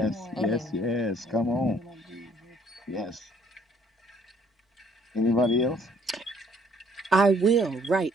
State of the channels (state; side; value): normal; both; correlation 0.62